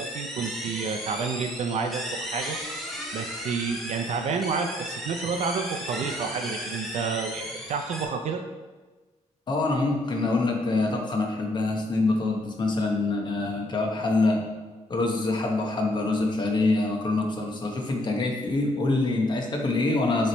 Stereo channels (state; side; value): normal; both; correlation 0.66